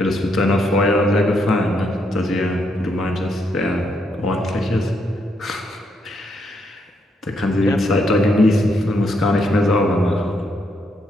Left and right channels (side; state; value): both; normal; correlation 0.76